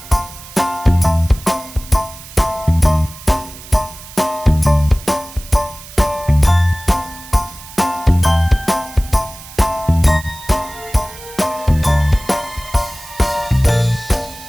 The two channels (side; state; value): right; noise; hiss, 17 dB below the sound